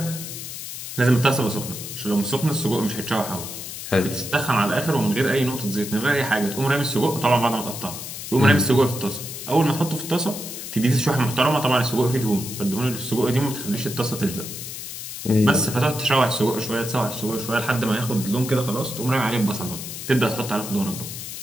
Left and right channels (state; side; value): noise; left; hiss, 9 dB below the sound